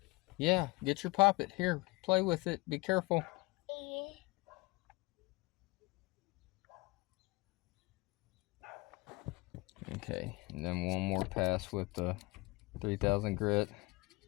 Yeah, get your poppet. Here, play with it. Be careful. Okay, and then one more pass with the 3000 grit.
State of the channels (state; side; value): quieter; right; 24.1 dB